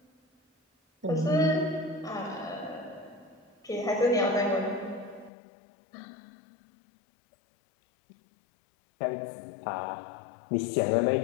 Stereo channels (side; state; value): right; drops out; at 5.3 s